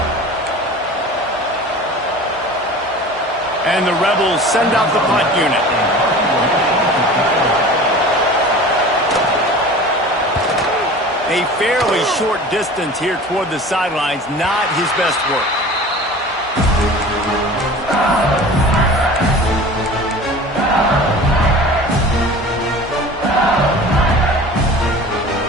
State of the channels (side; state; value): both; normal; correlation 0.39